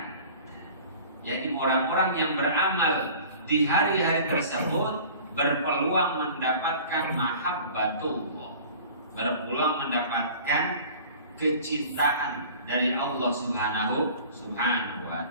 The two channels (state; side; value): inverted; both; correlation -0.44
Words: Jadi orang-orang yang beramal di hari-hari tersebut berpeluang mendapatkan mahabbatullah, berpeluang mendapatkan kecintaan dari Allah Subhanahu wa